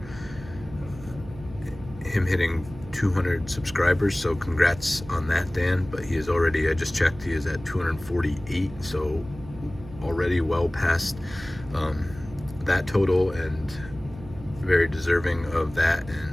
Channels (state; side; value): noise; right; hum, 16 dB below the sound